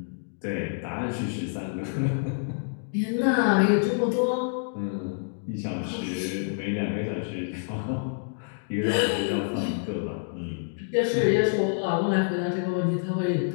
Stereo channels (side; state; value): right; silent; digital silence